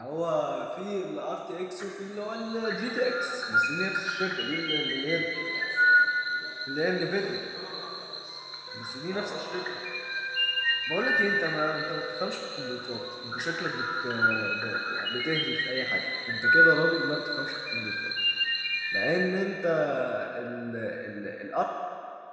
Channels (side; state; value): both; identical; correlation 1.00